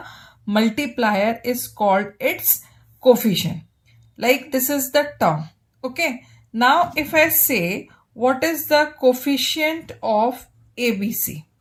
multiplier is called its coefficient. Like this is the term. Okay. Now if I say what is the coefficient of ABC?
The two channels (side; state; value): both; identical; correlation 1.00